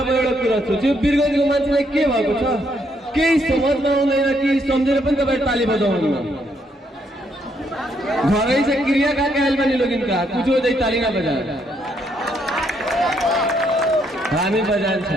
म एउटा कुरा सोच्छु वीरगञ्जको मान्छेलाई के भएको छ केही समझमा आउँदैन कि सम्झेर पनि तपाईँ ताली बजाउनु घरै से क्रिया का कहल बनी लोग इनका कुछ हो जाए ताली ना बजा हामी बजान्छ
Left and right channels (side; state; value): both; normal; correlation 0.73